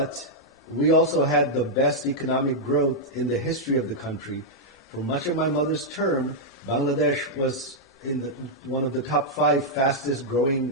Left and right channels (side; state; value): both; normal; correlation -0.05